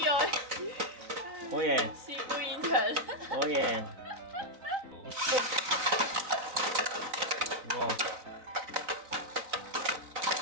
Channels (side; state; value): left; late; 3.9 ms